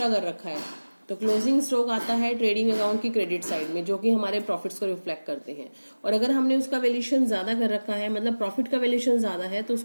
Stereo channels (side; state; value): both; inverted; correlation -1.00